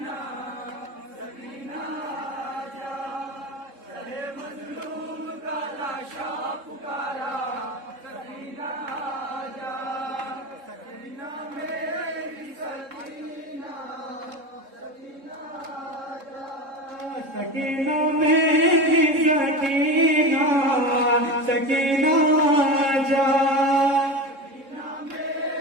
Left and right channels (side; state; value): left; late; 3.7 ms